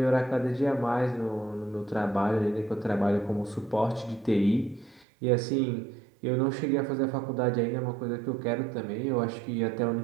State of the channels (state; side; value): drops out; left; at 5.1 s